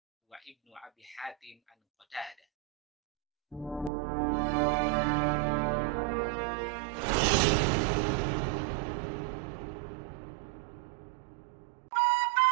wa Ibnu Abi Hatim an Qatadah.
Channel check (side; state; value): left; drops out; at 3.9 s